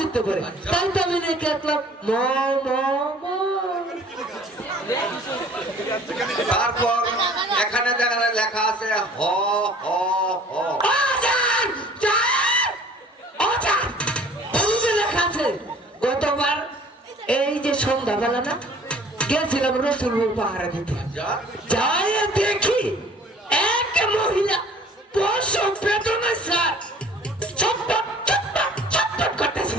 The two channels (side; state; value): both; normal; correlation 0.51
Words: পারে। তাই তো আমি রেখে আসলাম ম ম ম। তারপর এখানে দেখা লেখা আছে হ হ হ। ও স্যার, স্যার, ও স্যার, ওই যে লেখা আছে গতবার এই যে সন্ধ্যাবেলা না গেছিলাম রসুলপুর পাহাড়ে দিতে, যাই দেখি এক মহিলা প্রসব বেদনা স্যার ছটপট ছটপট ছটপট করতেছে